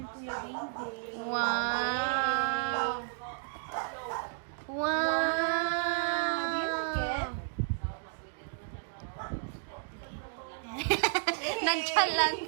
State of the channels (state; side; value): silent; left; digital silence